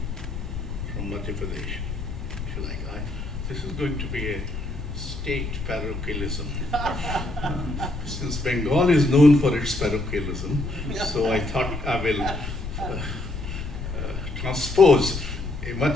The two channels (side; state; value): left; noise; rumble, 6 dB below the sound